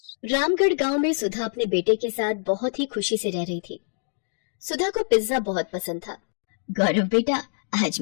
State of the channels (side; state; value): right; silent; digital silence